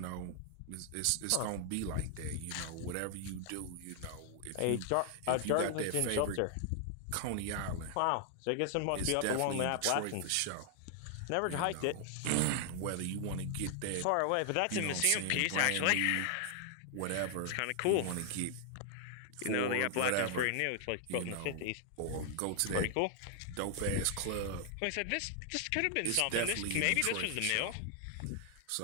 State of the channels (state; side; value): different; both; correlation 0.00